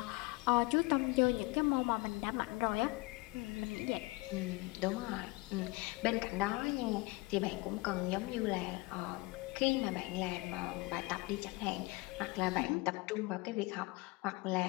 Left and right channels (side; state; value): right; quieter; 23.9 dB